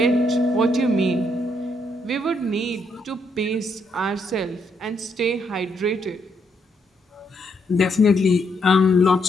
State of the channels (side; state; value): both; normal; correlation 0.75